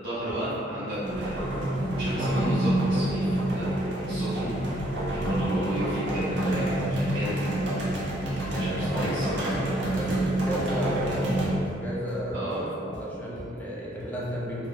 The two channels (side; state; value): both; normal; correlation 0.67